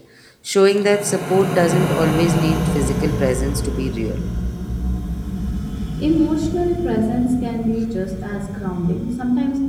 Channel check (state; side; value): identical; both; correlation 1.00